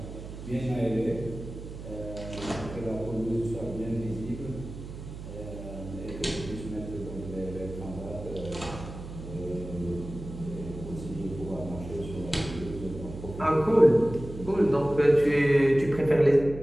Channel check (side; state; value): right; noise; hum, 11 dB below the sound